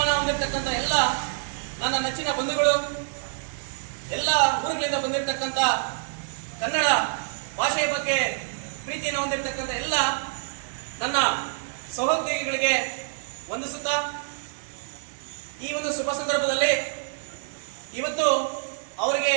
ಹೊಂದಿರತಕ್ಕಂಥ ಎಲ್ಲ ನನ್ನ ನೆಚ್ಚಿನ ಬಂಧುಗಳು, ಎಲ್ಲ ಊರುಗಳಿಂದ ಬಂದಿರತಕ್ಕಂಥ ಕನ್ನಡ ಭಾಷೆಯ ಬಗ್ಗೆ ಪ್ರೀತಿಯನ್ನು ಹೊಂದಿರತಕ್ಕಂಥ ಎಲ್ಲ ನನ್ನ ಸಹೋದ್ಯೋಗಿಗಳಿಗೆ ವಂದಿಸುತ್ತಾ, ಈ ಒಂದು ಶುಭ ಸಂದರ್ಭದಲ್ಲಿ ಇವತ್ತು ಅವರಿಗೆ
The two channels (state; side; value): silent; left; digital silence